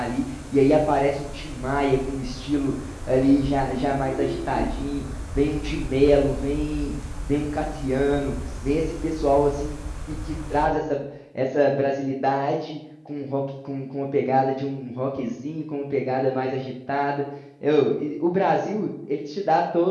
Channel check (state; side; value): identical; both; correlation 1.00